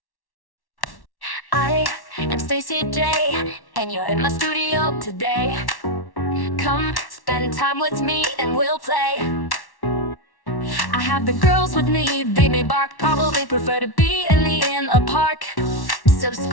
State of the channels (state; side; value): late; right; 1.1 ms